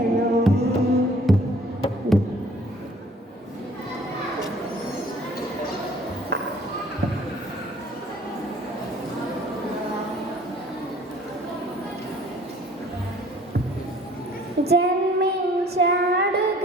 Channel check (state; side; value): normal; both; correlation 0.54